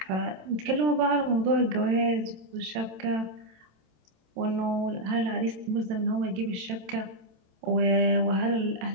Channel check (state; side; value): late; left; 27 ms